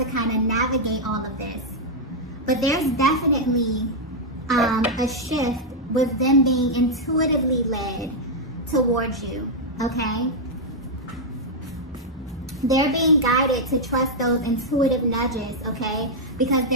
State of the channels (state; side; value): normal; both; correlation -0.03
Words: kind of navigate all of this. But there's definitely a shift with them being intuitively led towards you, okay? They're being guided to trust those intuitive nudges, okay? Because